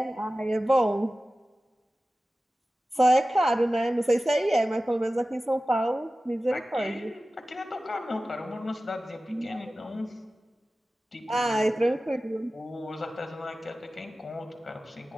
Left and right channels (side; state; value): both; normal; correlation 0.96